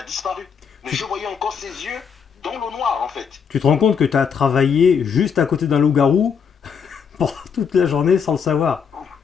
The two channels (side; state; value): right; quieter; 6.7 dB